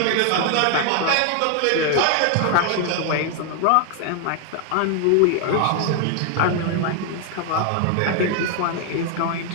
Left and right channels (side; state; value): both; different; correlation 0.00